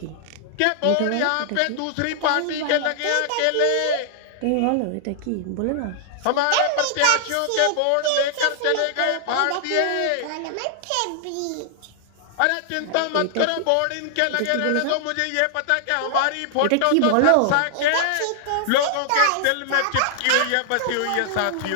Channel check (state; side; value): different; both; correlation -0.01